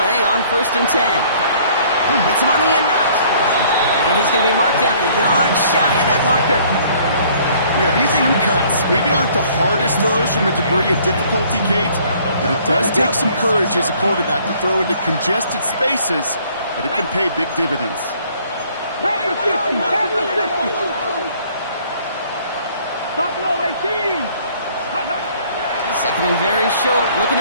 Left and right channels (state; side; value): inverted; both; correlation -0.58